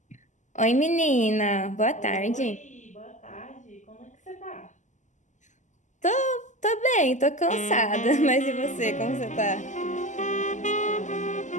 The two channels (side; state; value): right; late; 0.35 ms